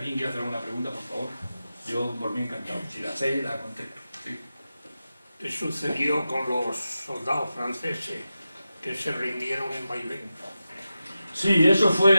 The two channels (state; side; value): inverted; both; correlation -0.92